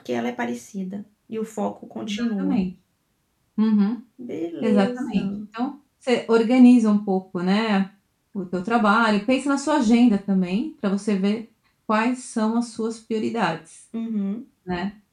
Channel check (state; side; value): identical; both; correlation 1.00